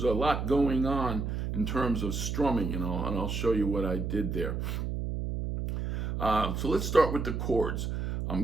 a lot going on in terms of strumming, and I'll show you what I did there. So let's start with the chords. I'm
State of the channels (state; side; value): noise; right; hum, 2 dB below the sound